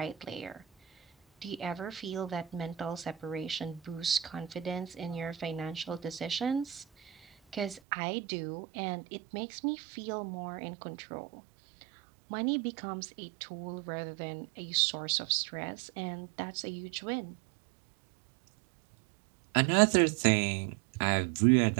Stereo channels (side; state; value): left; drops out; at 7.8 s